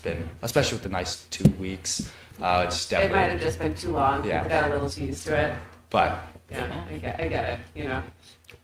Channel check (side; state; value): both; identical; correlation 1.00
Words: especially with the nice 2 weeks, it's It definitely. might have just been too long. Yeah. People got a little too used to it. But Yeah, I get it, you know.